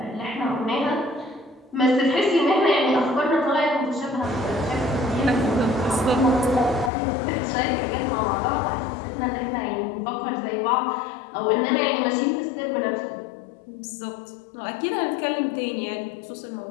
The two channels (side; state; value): right; drops out; at 6.9 s